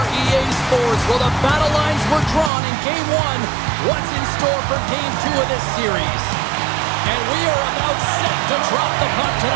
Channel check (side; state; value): left; drops out; at 2.5 s